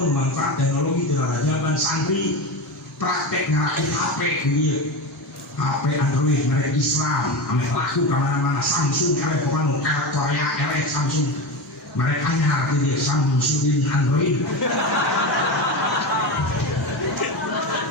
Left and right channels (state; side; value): normal; both; correlation 0.21